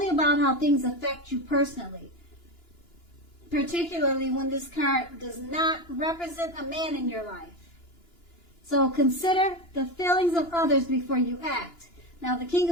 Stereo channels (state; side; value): late; right; 2.9 ms